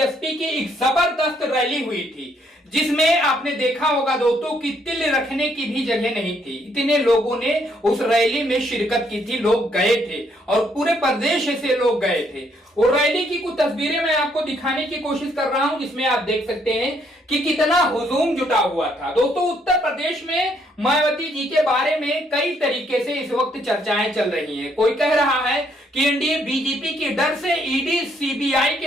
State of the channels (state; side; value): normal; both; correlation 0.70